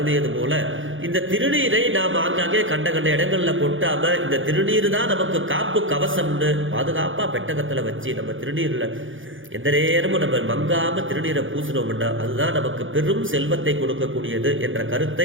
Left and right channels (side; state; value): left; late; 0.57 ms